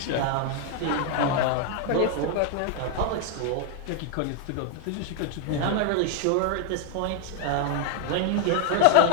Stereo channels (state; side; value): different; both; correlation 0.00